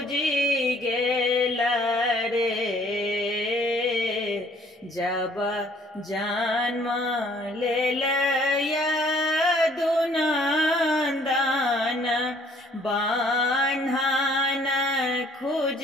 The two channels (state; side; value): normal; both; correlation 0.60